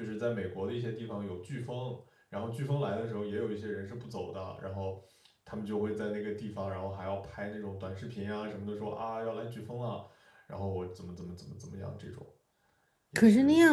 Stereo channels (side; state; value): both; identical; correlation 1.00